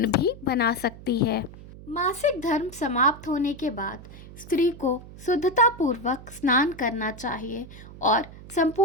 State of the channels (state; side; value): noise; right; hum, 17 dB below the sound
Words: भी बना सकती है। मासिक धर्म समाप्त होने के बाद स्त्री को शुद्धतापूर्वक स्नान करना चाहिए और